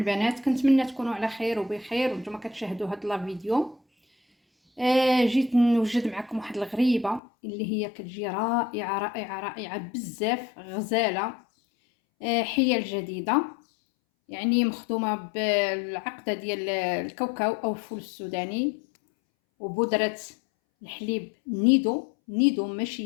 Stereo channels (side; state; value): right; drops out; at 7.2 s